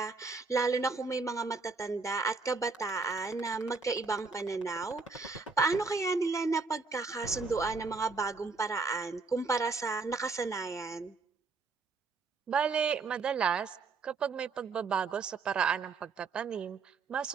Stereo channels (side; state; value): left; quieter; 4.3 dB